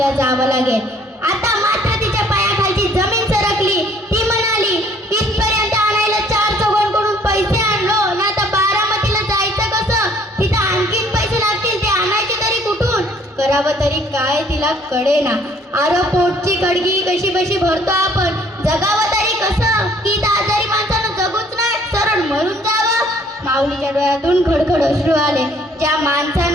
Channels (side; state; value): both; normal; correlation 0.59